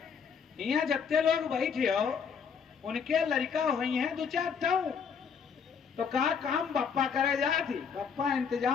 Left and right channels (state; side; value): quieter; right; 6.5 dB